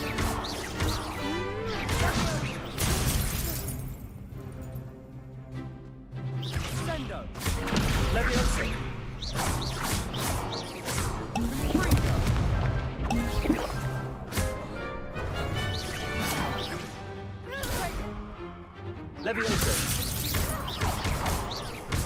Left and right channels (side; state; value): both; identical; correlation 1.00